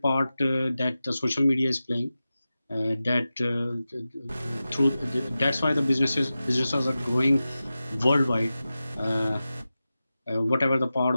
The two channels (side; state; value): both; inverted; correlation -0.94